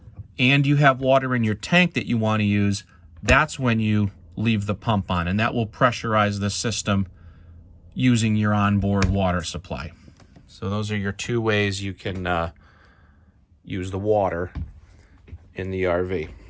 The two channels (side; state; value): both; identical; correlation 1.00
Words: and you have water in your tank that you want to use, that's when you leave the pump on, and that will pressurize the system using your onboard water supply. So those are your two ways you can use the water in the RV.